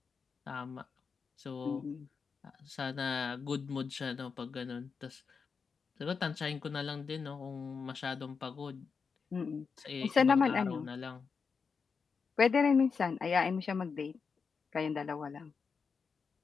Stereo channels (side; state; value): right; quieter; 5.5 dB